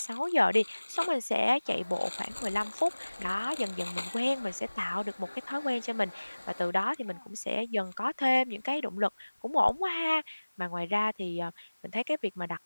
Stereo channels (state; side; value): inverted; both; correlation -1.00